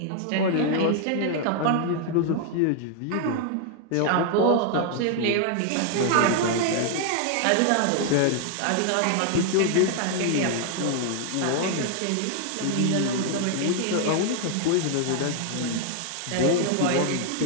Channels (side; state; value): both; different; correlation 0.00